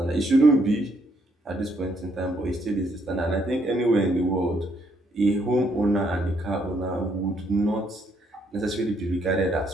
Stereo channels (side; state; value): both; normal; correlation 0.71